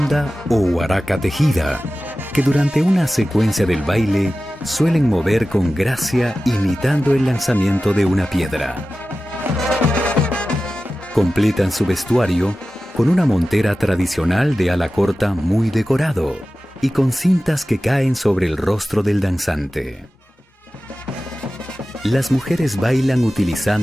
o huaraca tejida, que durante una secuencia del baile suelen mover con gracia imitando el lanzamiento de una piedra. Completan su vestuario con una montera tradicional de ala corta muy decorado y con cintas que caen sobre el rostro del danzante. Las mujeres bailan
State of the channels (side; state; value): both; normal; correlation 0.95